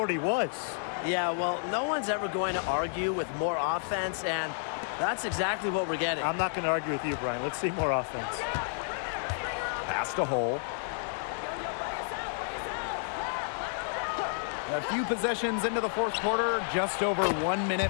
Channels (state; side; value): silent; right; 57 dB below the other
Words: was. Yeah, well, no one's ever going to argue with more offense, and that's exactly what we're getting. I'm not going to argue with you, Brian. Let's see more offense. Pass to Hole. A few possessions into the 4th quarter, just over 1